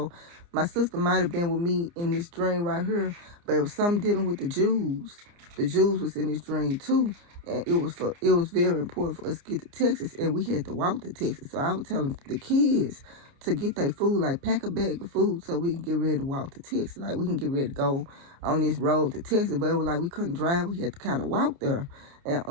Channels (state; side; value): late; left; 29 ms